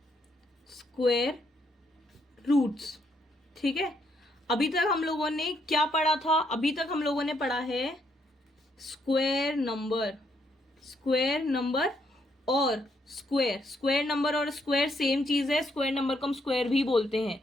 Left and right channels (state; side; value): normal; both; correlation 0.74